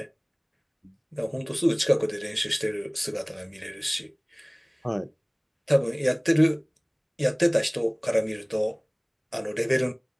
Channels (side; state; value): both; identical; correlation 1.00